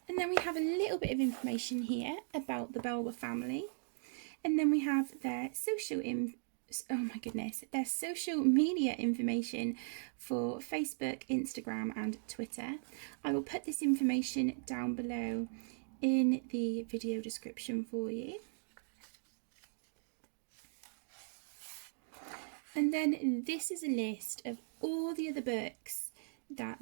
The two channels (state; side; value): silent; left; digital silence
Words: and then we have a little bit of information here about the Belba family, and then we have their social their social media information for Facebook, Instagram and Twitter. I will put this information down below in the video description for you. And then this is a list of all the other books that